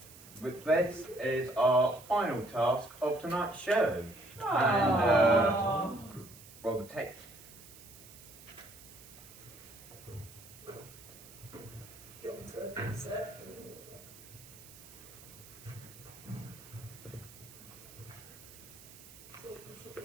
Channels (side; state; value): right; noise; hiss, 19 dB below the sound